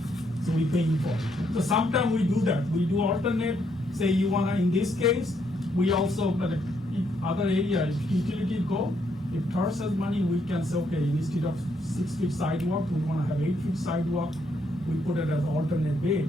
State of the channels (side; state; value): both; normal; correlation 0.74